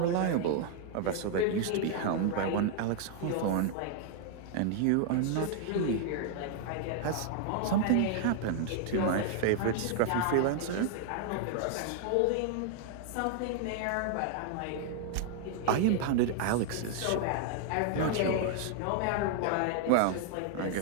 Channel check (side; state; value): both; different; correlation 0.00